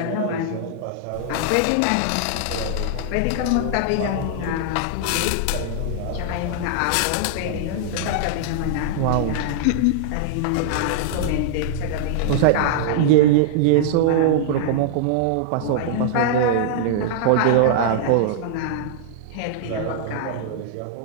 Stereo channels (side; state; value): both; different; correlation -0.01